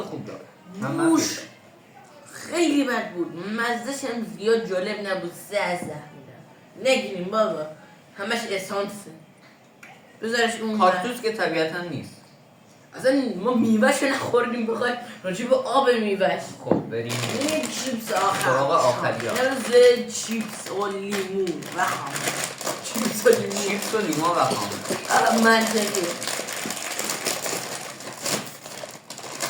خوب داره بوش خیلی بد بود مزدش هم زیاد جالب نبود 3 از 10 میدم نگیریم بابا همش اسانسه بذارش اون کاکتوس که طبیعتا نیست اصلا ما میوهش رو نخوردیم بخوای راجع به آب میوهش خب بریم این چیپس آخر سراغ آخری ها. مرز چیپس و لیمون و خامه چیپس و لیمون چیپس و لیما و خامه منطقی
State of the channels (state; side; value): identical; both; correlation 1.00